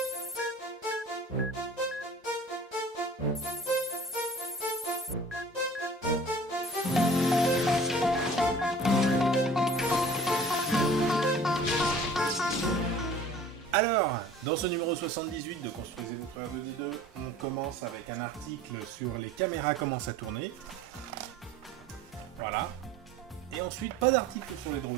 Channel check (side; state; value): both; normal; correlation 0.47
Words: Alors, dans ce numéro 78 de Construisez votre R2D2, on commence avec un article sur les caméras commencent à tourner. Voilà. Et ensuite, pas d'article sur les